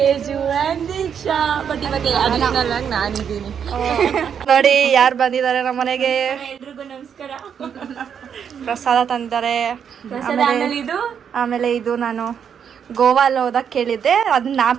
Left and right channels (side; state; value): left; quieter; 7.8 dB